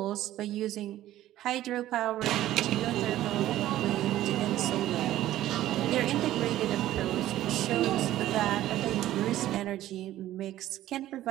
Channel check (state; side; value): quieter; left; 13.9 dB